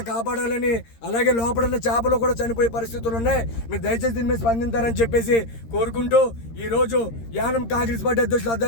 కాపాడాలని, అలాగే లోపల ఉన్న చేపలు కూడా చనిపోయే పరిస్థితులు ఉన్నాయి. మీరు దయచేసి దీని మీద స్పందించారని చెప్పేసి కోరుకుంటూ ఈరోజు యానం కాంగ్రెస్ పార్టీ అధ్యక్షులు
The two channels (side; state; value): right; late; 13 ms